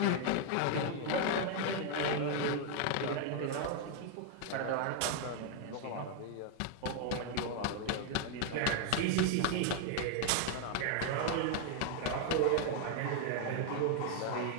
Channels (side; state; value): both; different; correlation 0.00